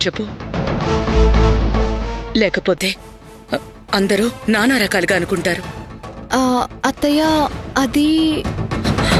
చెప్పు. లేకపోతే అందరూ నానా రకాలుగా అనుకుంటారు. అత్తయ్య, అది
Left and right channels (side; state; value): both; identical; correlation 1.00